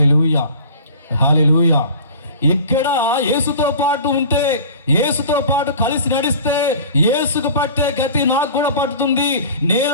hallelujah. ఇక్కడ యేసుతో పాటు ఉంటే, యేసుతో పాటు కలిసి నడిస్తే యేసుకు పట్టే గతి నాకు కూడా పట్టుతుంది.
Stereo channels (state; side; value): inverted; both; correlation -0.41